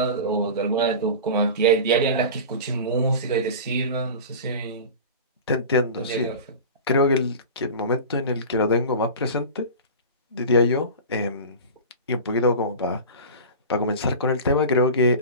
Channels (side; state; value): both; inverted; correlation -0.32